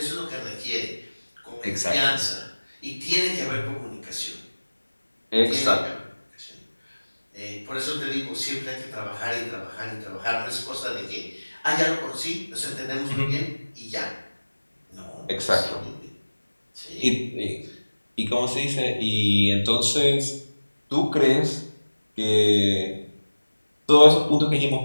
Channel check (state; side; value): inverted; both; correlation -1.00